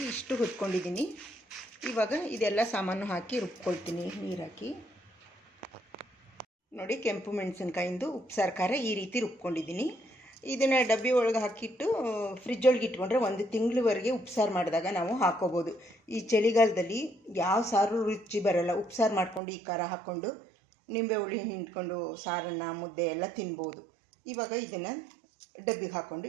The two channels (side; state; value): left; drops out; at 19.4 s